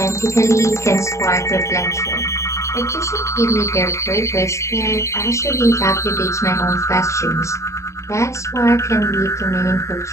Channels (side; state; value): right; late; 0.14 ms